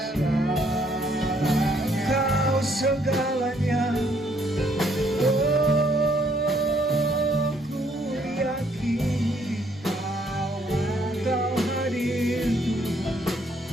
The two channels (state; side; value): normal; both; correlation 0.67